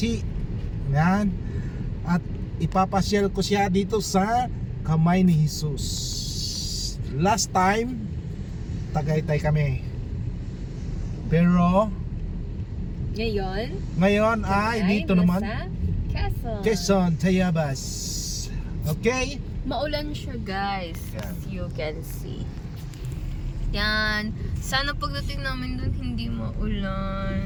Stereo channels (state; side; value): identical; both; correlation 1.00